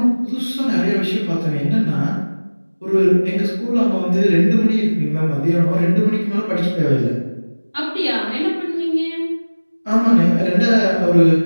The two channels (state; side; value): inverted; both; correlation -1.00